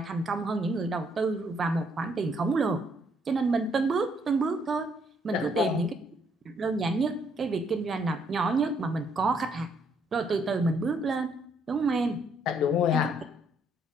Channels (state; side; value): normal; both; correlation 0.70